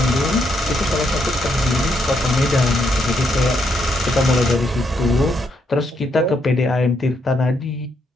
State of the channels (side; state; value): both; normal; correlation 0.77